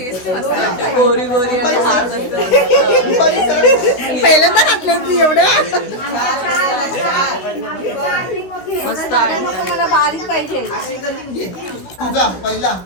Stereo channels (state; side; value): late; right; 16 ms